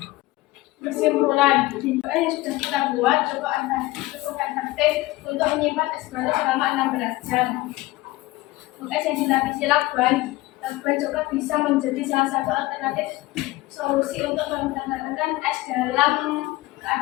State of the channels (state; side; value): quieter; right; 19.2 dB